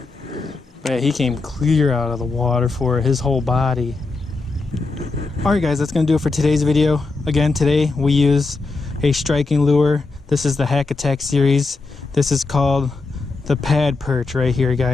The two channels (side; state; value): right; quieter; 3.7 dB